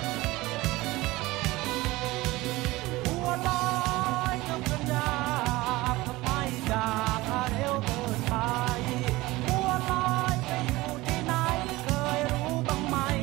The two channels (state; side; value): quieter; left; 19.8 dB